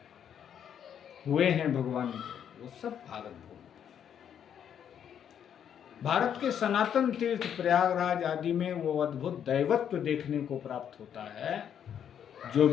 हुए हैं भगवान के, वो सब भारत भूमि। भारत के सनातन तीर्थ प्रयागराज आदि में वो अद्भुत दैवत्व देखने को प्राप्त होता है जो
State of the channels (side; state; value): right; quieter; 8.9 dB